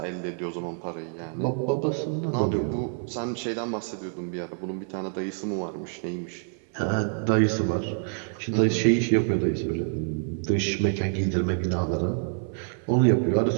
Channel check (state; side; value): silent; left; 58 dB below the other